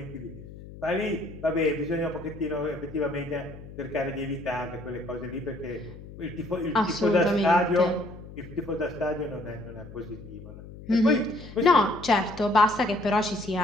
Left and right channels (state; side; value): noise; left; hum, 15 dB below the sound